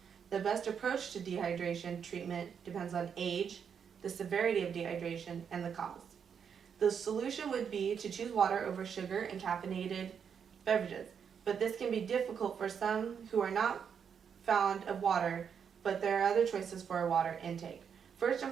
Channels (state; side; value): quieter; left; 7.2 dB